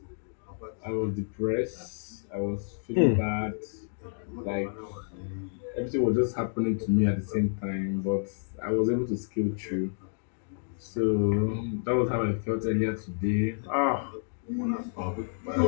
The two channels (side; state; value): right; silent; digital silence